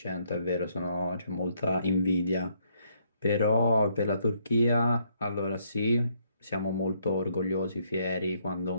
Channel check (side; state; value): both; inverted; correlation -0.71